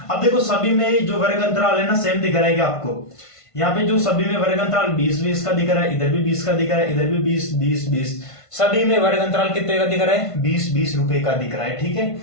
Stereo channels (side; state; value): right; late; 1.5 ms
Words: अब देखो सभी में जो वर्ग अंतराल है ना सेम दिख रहा है आपको, यहाँ पे जो सभी में वर्ग अंतराल 20-20 का दिख रहा है, इधर भी 20 का दिख रहा है, इधर भी 20-20-20, सभी में वर्ग अंतराल कितने का दिख रहा है, 20-20 रुपए का दिख रहा है। ठीक है,